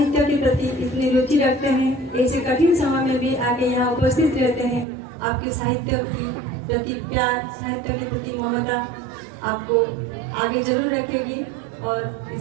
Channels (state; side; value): drops out; left; at 4.9 s